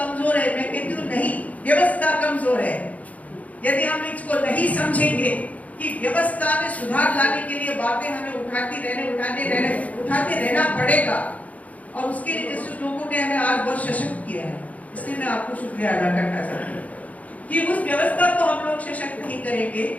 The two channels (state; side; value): late; right; 0.071 ms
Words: है, मैं कहती हूँ नहीं, व्यवस्था कमजोर है। यदि हम इसको नहीं समझेंगे कि व्यवस्था में सुधार लाने के लिए बातें हमें उठाते रहना पड़ेगा, और उसके लिए जिस लोगों ने हमें आज बहुत सशक्त किया है, इसलिए मैं आपको शुक्रिया अदा करना चाहती हूँ कि उस व्यवस्था को हम लोग सशक्त नहीं करेंगे